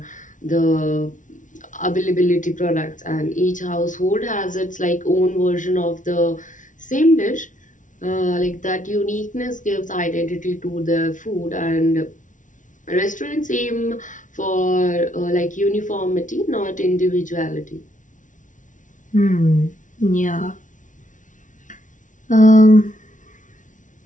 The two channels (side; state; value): right; late; 0.37 ms